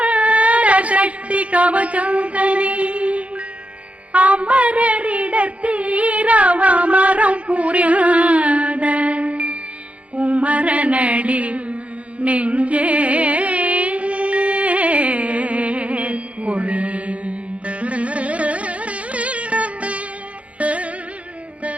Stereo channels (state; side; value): late; left; 0.064 ms